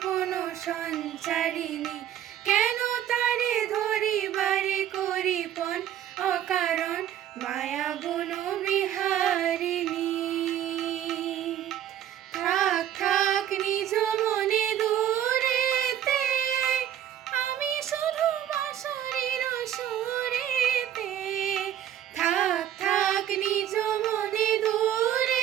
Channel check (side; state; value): left; quieter; 10.9 dB